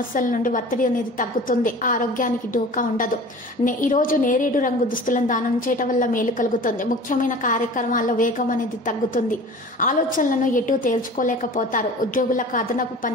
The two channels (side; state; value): both; normal; correlation 0.40